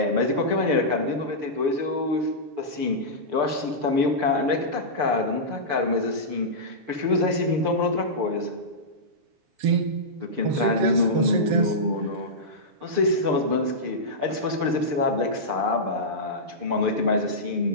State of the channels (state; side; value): late; left; 6.8 ms